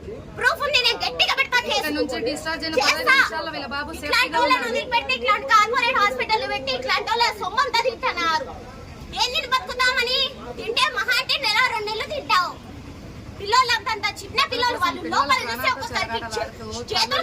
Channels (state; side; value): identical; both; correlation 1.00